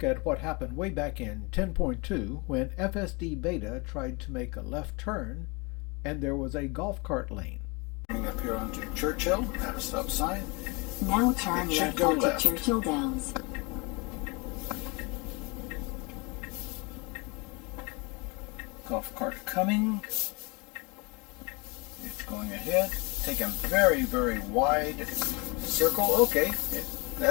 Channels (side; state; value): right; quieter; 28.6 dB